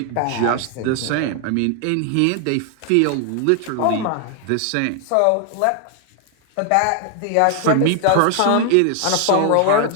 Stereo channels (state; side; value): different; both; correlation 0.00